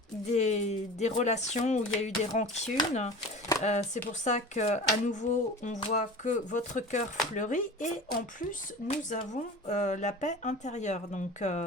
des relations où il y a eu des rancunes. C'est pour ça qu'à nouveau, on voit que votre cœur fleurit. Et en plus, nous avons la paix intérieure. Donc,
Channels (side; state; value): both; normal; correlation 0.35